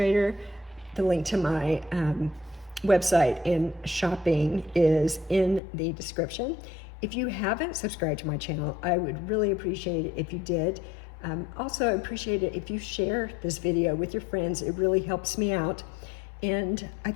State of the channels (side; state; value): right; drops out; at 5.6 s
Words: the link to my website and shopping is in the description. If you haven't subscribed to my channel, I would really appreciate it if you did. Also appreciate it if you share this video with your friends. It really helps me out. And I